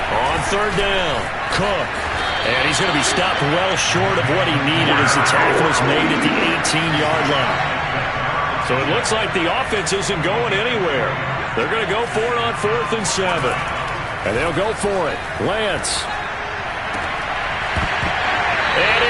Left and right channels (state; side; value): identical; both; correlation 1.00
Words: On 3rd down, Cook. And he's going to be stopped well short of what he needed as the tackle is made at the 18-yard line. So it looks like the offense isn't going anywhere. They're going to go for it on 4th and 7. And they'll go for it. Lance. And